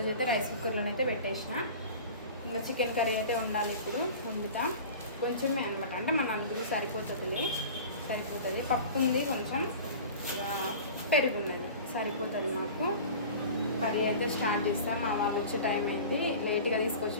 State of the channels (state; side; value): inverted; both; correlation -0.38